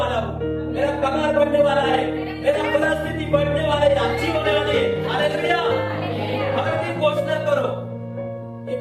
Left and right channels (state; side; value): identical; both; correlation 1.00